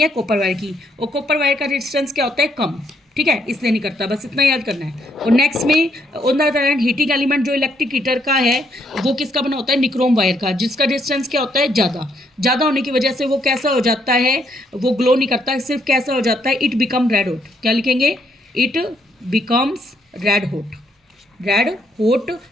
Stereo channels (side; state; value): both; normal; correlation 0.72